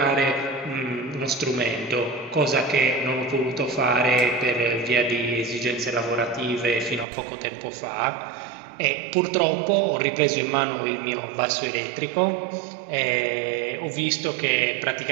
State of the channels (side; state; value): left; drops out; at 7.1 s